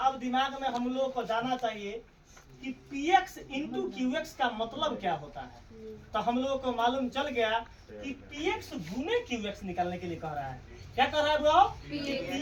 अब दिमाग में हम लोग को जाना चाहिए कि px इंटू qx का मतलब क्या होता है। तो हम लोगों को मालूम चल गया कि px गुने qx निकालने के लिए कह रहा है। क्या कह रहा है वो?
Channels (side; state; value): both; identical; correlation 1.00